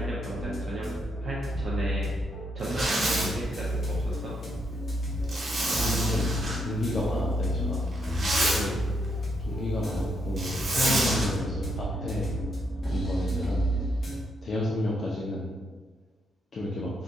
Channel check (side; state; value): both; normal; correlation 0.77